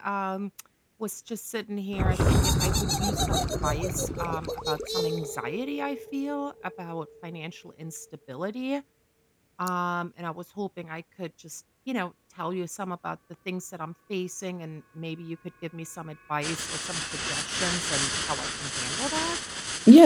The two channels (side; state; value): both; identical; correlation 1.00